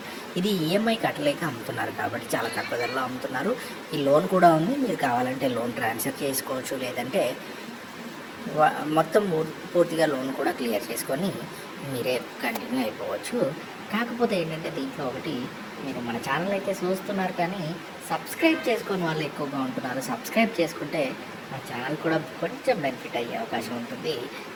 ఇది ఈఎంఐ కట్టలేక అమ్ముతున్నారు కాబట్టి చాలా తక్కువ ధరలో అమ్ముతున్నారు. ఈ లోన్ కూడా ఉంది. మీరు కావాలంటే లోన్ ట్రాన్స్ఫర్ చేసుకోవచ్చు, లేదంటే మొత్తం పూర్తిగా లోన్ కూడా క్లియర్ చేసుకొని మీరే కంటిన్యూ అయిపోవచ్చు. కాకపోతే ఏంటంటే దీంట్లో ఒకటి, మీరు మన ఛానల్ అయితే చూస్తున్నారు కానీ సబ్స్క్రైబ్ చేసుకొని వాళ్ళు ఎక్కువగా ఉంటున్నారు. సబ్స్క్రైబ్ చేసుకుంటే మా ఛానల్ కూడా కొంచెం బెనిఫిట్ అయ్యే అవకాశం ఉంటుంది.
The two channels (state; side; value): identical; both; correlation 1.00